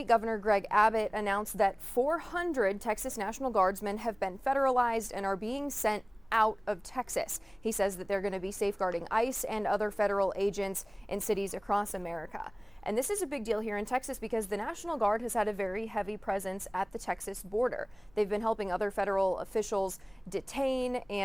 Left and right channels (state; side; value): noise; right; rumble, 29 dB below the sound